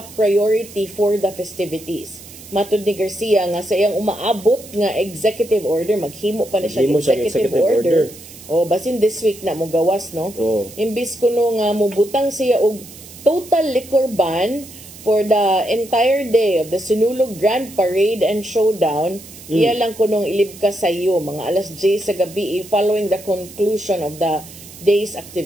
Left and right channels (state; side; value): noise; right; hiss, 18 dB below the sound